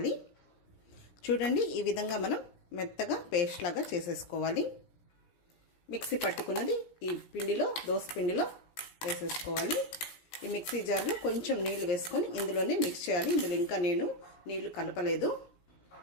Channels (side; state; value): right; late; 17 ms